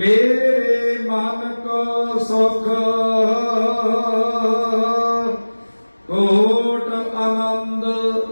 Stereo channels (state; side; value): inverted; both; correlation -1.00